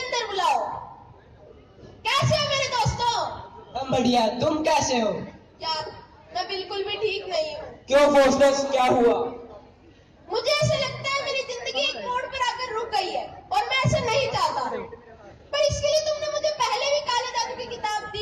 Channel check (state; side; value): identical; both; correlation 1.00